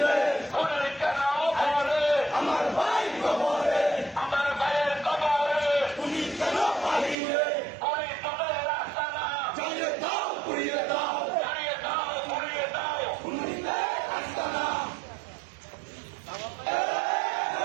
খুনি কেন ঘরে? আমার ভাই কবরে, আমার ভাইয়ের কবরে খুনি কেন বাহিরে, খুনি তোদের রাস্তা না। জ্বালিয়ে দাও, পুড়িয়ে দাও, জ্বালিয়ে দাও, পুড়িয়ে দাও। খুনিতে আস্তানা।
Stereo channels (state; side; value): drops out; left; at 7.2 s